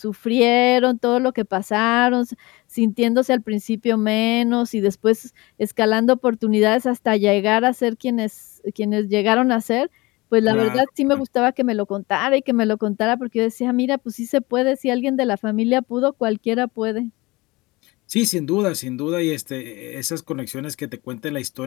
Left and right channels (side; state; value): right; quieter; 22.5 dB